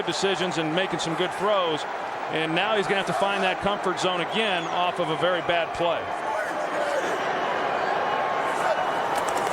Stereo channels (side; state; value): both; identical; correlation 1.00